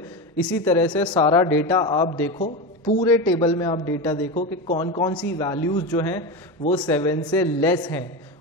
इसी तरह से सारा डेटा आप देखो, पूरे टेबल में आप डेटा देखो कि कौन कौन सी वैल्यूज जो हैं वो 7 से लेस हैं,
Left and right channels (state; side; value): normal; both; correlation 0.20